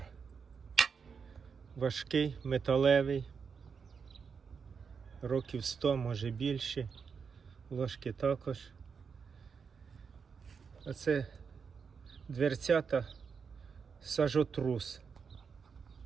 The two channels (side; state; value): left; quieter; 6.0 dB